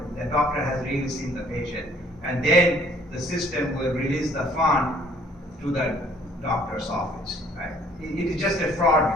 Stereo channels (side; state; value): both; normal; correlation 0.59